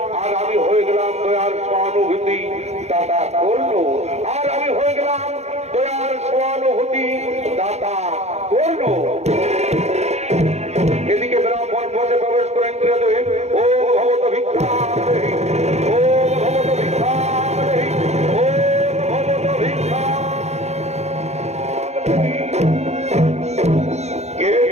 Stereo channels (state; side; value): late; left; 0.32 ms